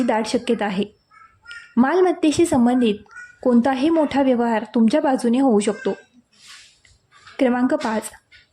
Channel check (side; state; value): both; identical; correlation 1.00